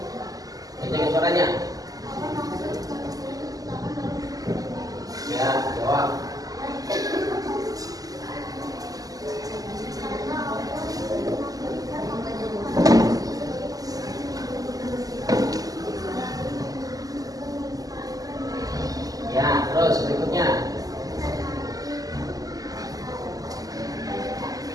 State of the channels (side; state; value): left; late; 0.17 ms